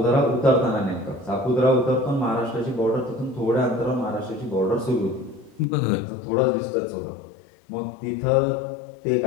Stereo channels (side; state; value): right; drops out; at 5.7 s